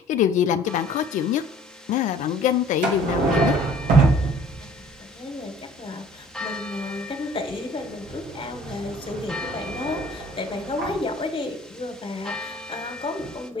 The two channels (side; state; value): both; normal; correlation 0.52